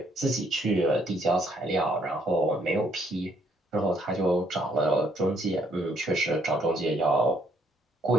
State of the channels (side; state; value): both; normal; correlation 0.69